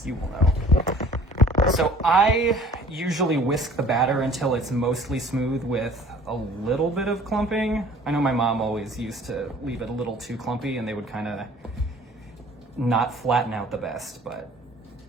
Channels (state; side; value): normal; both; correlation 0.50